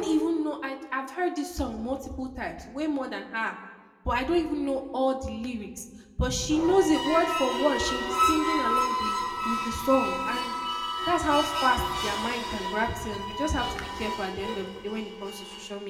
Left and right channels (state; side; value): identical; both; correlation 1.00